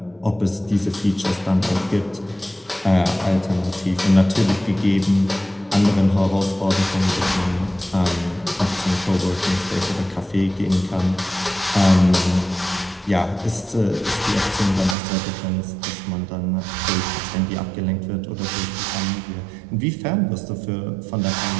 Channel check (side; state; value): left; drops out; at 15.0 s